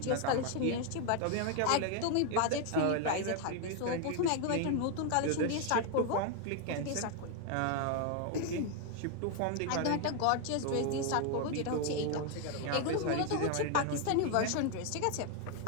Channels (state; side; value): different; both; correlation 0.01